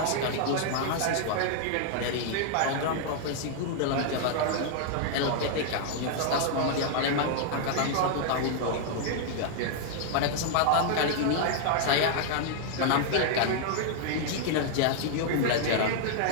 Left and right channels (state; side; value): different; both; correlation 0.00